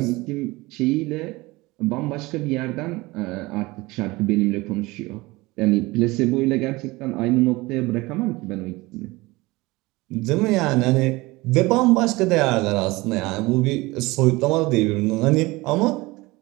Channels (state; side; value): quieter; left; 21.7 dB